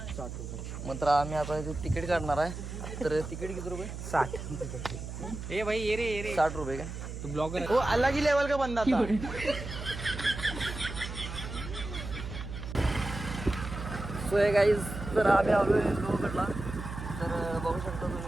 60 रुपये. मात्र आम्ही आता इथे तिकीट काढणार आहे. तर तिकीट किती रुपये? 60. ए भाई ये रे 60 रुपये का? तू ब्लॉगर है. वो अलग ही लेवल का बंदा था. सो हे गाईज, तर आम्ही आलो आहे लोहगडला. तर बघू शकता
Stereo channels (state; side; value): noise; right; hum, 8 dB below the sound